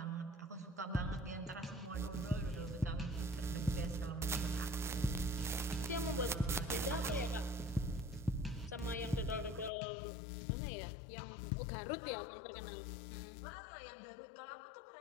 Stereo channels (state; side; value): drops out; right; at 9.7 s